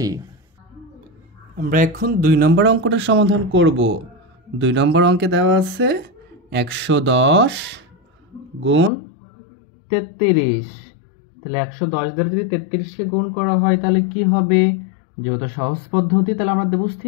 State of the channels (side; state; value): right; drops out; at 8.9 s